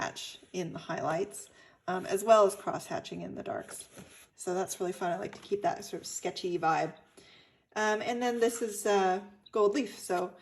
in the highlights, as well as cross hatching in the darks. So that's really fun. I like to keep that sort of sketchy vibe. And then this is gold leaf. So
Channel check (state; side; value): identical; both; correlation 1.00